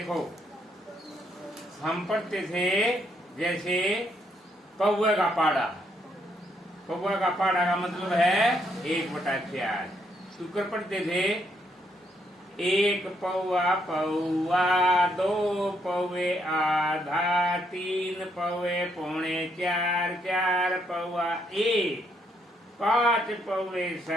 हम पढ़ते थे जैसे कौवे का पाड़ा। कौवे का पाड़ा का मतलब है 1/4। शुक्र पढ़ते थे 1 पौवा पौवा, 2 पौवे आधा, 3 पौवे पौने 4, 4 पौवा 1, 5 पौवे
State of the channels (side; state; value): both; normal; correlation 0.74